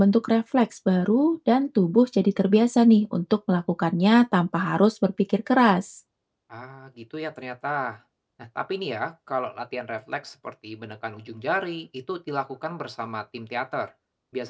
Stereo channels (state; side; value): identical; both; correlation 1.00